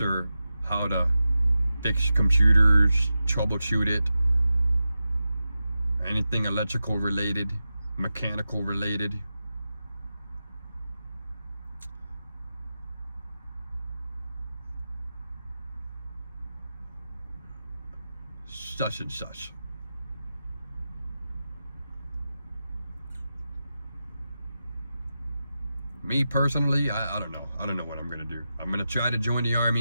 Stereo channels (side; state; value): both; inverted; correlation -0.91